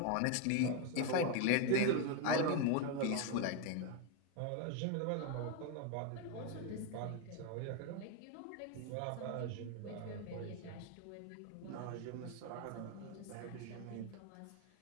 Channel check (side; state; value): both; different; correlation 0.02